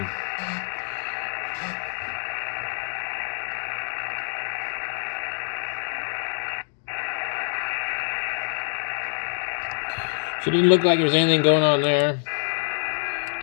So it didn't look like there's anything going on there.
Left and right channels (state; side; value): silent; right; 61 dB below the other